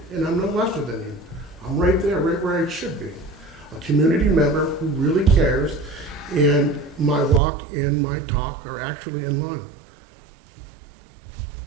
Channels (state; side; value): drops out; left; at 7.4 s